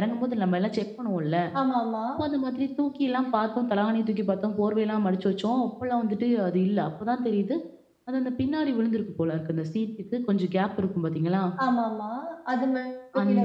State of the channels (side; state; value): both; identical; correlation 1.00